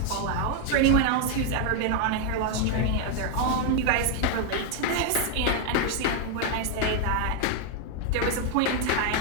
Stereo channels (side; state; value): both; different; correlation 0.01